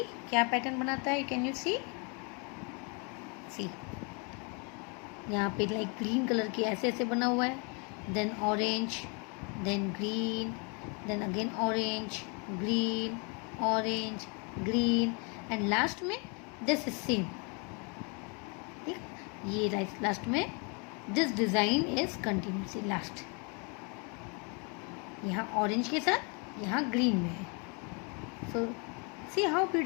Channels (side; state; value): right; quieter; 34.4 dB